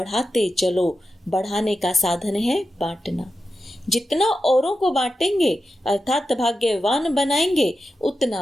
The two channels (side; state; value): both; normal; correlation 0.90